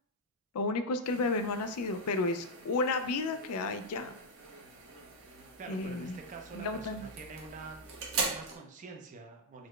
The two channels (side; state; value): both; normal; correlation -0.01